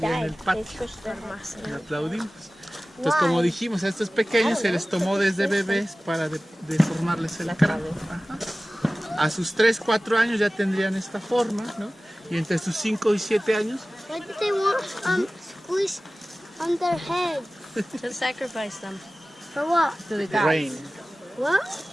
en el died. They patio. squished their muscle. Y aplaudimos. Entonces, como dijimos, a estos pequeños se les tomó desde bebés para deformarles el cráneo. Ajá. A sus 3, 4 años ya tendrían esta forma, ¿no? Y entre sus 5 y 7 años, Why did they want squish on their head? To sacrifice them. For what? To the the rain. What?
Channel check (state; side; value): normal; both; correlation 0.97